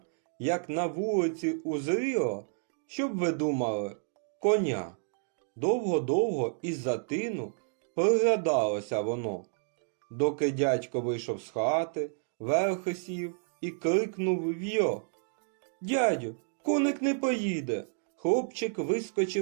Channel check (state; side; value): silent; left; digital silence